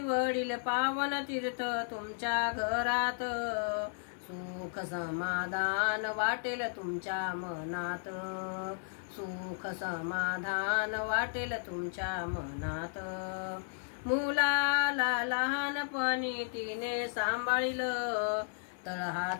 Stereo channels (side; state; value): right; silent; 55 dB below the other